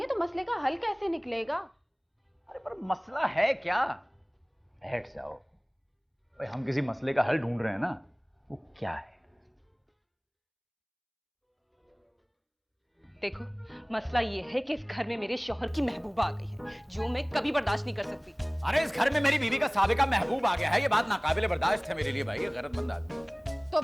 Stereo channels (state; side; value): identical; both; correlation 1.00